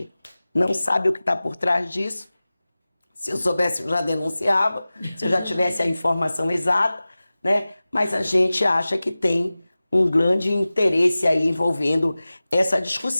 não sabe o que está por trás disso. Se eu soubesse, eu já denunciava, se eu já tivesse a informação exata, né? Mas a gente acha que tem um grande interesse aí envolvendo essa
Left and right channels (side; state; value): both; inverted; correlation -0.97